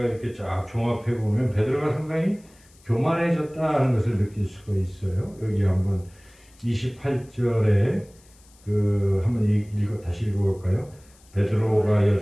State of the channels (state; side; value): noise; left; hiss, 29 dB below the sound